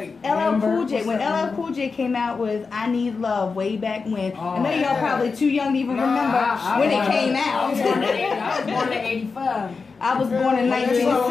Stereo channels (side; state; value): right; quieter; 4.7 dB